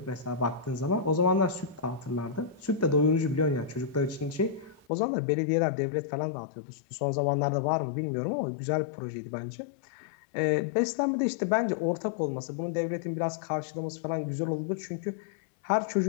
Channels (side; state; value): right; drops out; at 4.9 s